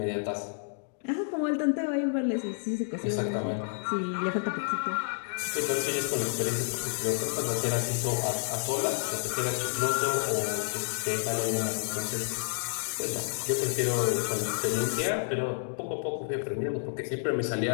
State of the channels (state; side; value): silent; right; digital silence